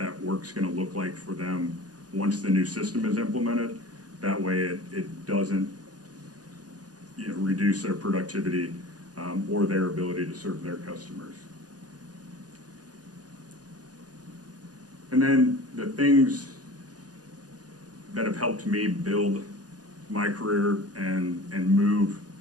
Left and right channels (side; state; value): left; late; 0.68 ms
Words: work's going to look like for them once the new system is implemented. That way it doesn't reduce their productivity or their ability to serve their customers. And then the things that have helped me build my career and move